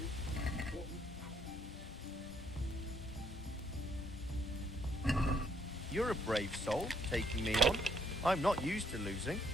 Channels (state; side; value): normal; both; correlation 0.70